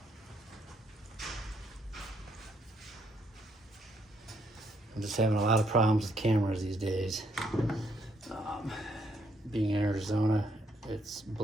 I'm just having a lot of problems with cameras these days. Being in Arizona, it's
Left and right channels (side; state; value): both; normal; correlation 0.73